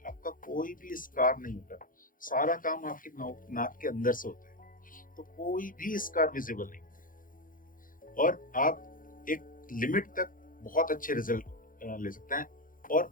आपका कोई भी स्कार नहीं होता, सारा काम आपके नाक के अंदर से होता है, तो कोई भी स्कार विजिबल नहीं होता और आप एक लिमिट तक बहुत अच्छे रिजल्ट ले सकते हैं।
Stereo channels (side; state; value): right; late; 0.40 ms